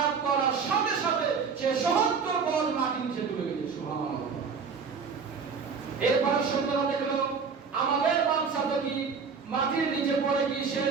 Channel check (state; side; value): quieter; left; 5.6 dB